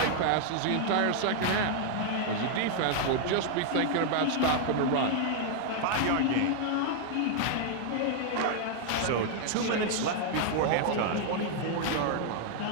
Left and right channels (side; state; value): both; different; correlation 0.00